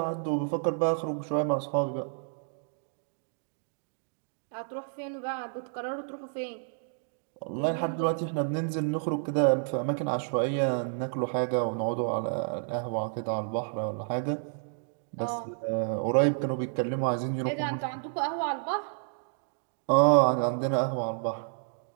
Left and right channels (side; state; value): left; silent; digital silence